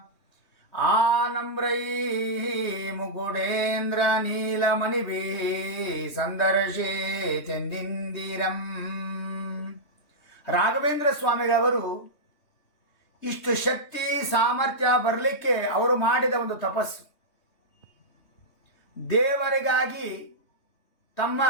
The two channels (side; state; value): right; late; 3.2 ms